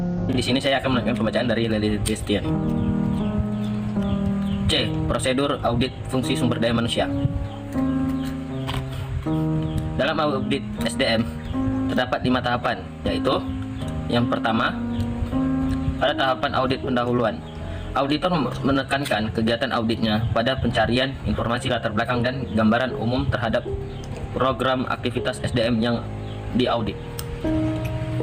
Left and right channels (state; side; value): identical; both; correlation 1.00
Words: Di sini saya akan melakukan pembacaan dari Lely Christian. C. Prosedur audit fungsi sumber daya manusia. Dalam audit SDM terdapat 5 tahapan, yaitu yang pertama, pada tahapan audit pendahuluan. Auditor menekankan kegiatan auditnya pada pencarian informasi latar belakang dan gambaran umum terhadap program aktivitas SDM yang diaudit.